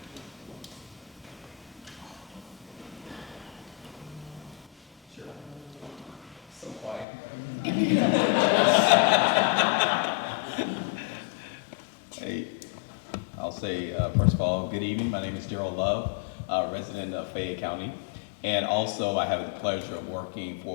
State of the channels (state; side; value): drops out; right; at 7.1 s